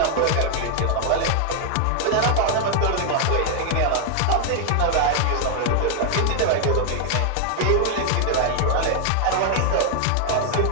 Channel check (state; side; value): different; both; correlation 0.00